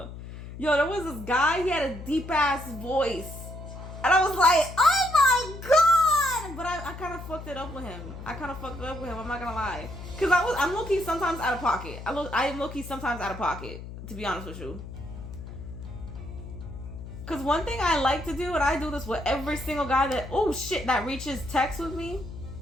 Yo, there was this guy, he had a deep ass voice. And I was like, oh my god! But I kind of fucked it up with him. I'm not gonna lie. Because I'm low-key sometimes out of pocket. I am low-key sometimes out of pocket, to be honest with you. Cause one thing I like to do, and I do this with every single guy that reaches text with me.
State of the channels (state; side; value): noise; left; hum, 11 dB below the sound